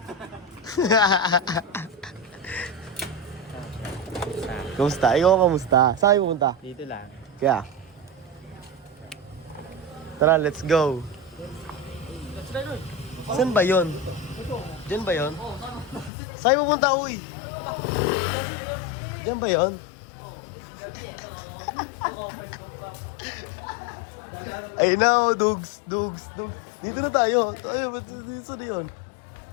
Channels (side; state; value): right; drops out; at 16.1 s